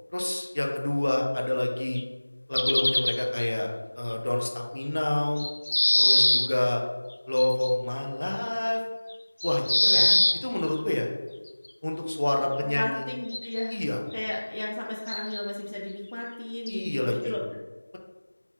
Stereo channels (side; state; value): both; inverted; correlation -1.00